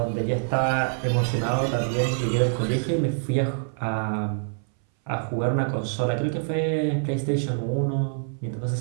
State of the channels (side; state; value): left; silent; 60 dB below the other